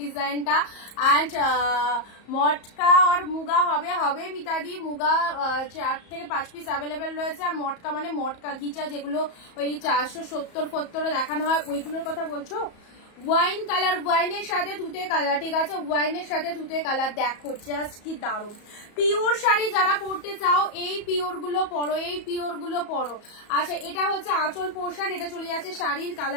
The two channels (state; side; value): late; right; 34 ms